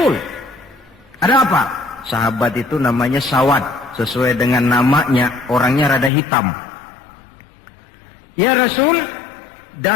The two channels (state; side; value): drops out; right; at 6.1 s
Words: Ada apa? Sahabat itu namanya Sawad, sesuai dengan namanya, orangnya rada hitam. Ya Rasul,